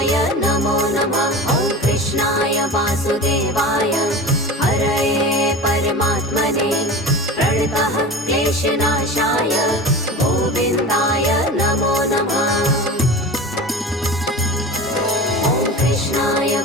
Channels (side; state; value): both; normal; correlation 0.32